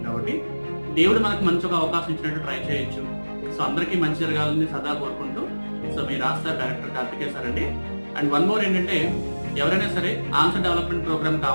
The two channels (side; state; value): both; inverted; correlation -1.00